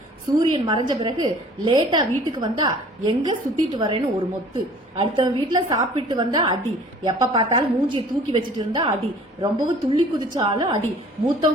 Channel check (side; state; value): both; normal; correlation 0.50